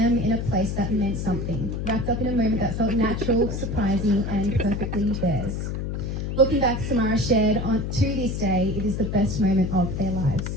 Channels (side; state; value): left; noise; hum, 3 dB below the sound